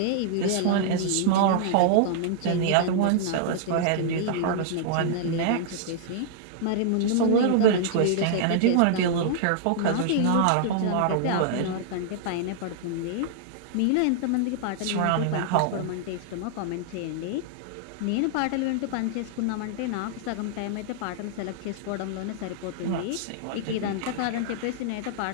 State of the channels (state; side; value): different; both; correlation -0.01